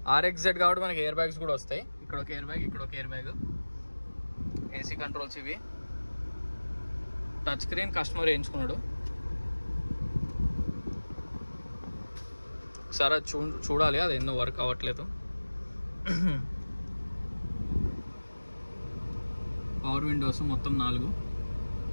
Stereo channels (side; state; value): both; inverted; correlation -1.00